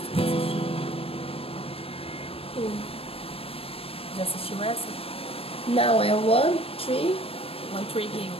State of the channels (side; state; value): right; late; 0.28 ms